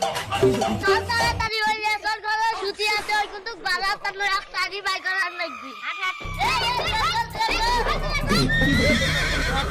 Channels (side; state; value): both; identical; correlation 1.00